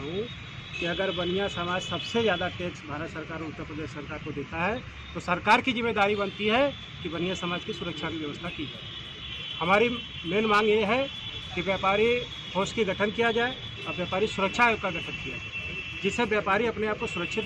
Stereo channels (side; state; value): both; identical; correlation 1.00